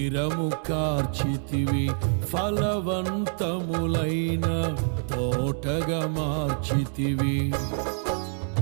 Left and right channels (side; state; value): left; silent; 61 dB below the other